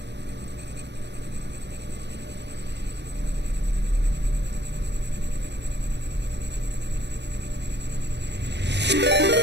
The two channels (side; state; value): left; late; 0.50 ms